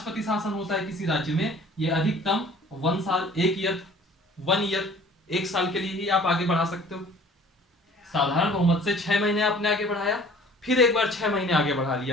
शासन होता है किसी राज्य में, ये अधिकतम 1 साल, 1 साल के लिए ही आप आगे बढ़ा सकते हो। साधारण बहुमत से 6 महीने आपने आगे बढ़ाया, फिर एक बार 6 महीने आगे बढ़ा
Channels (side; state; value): both; normal; correlation 0.50